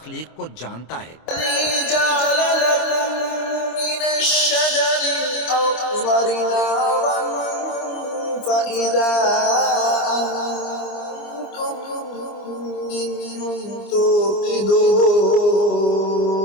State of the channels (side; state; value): right; late; 26 ms